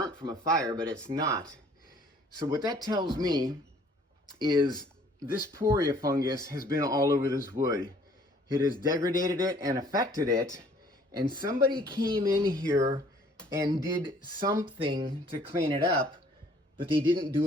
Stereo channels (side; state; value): both; normal; correlation 0.58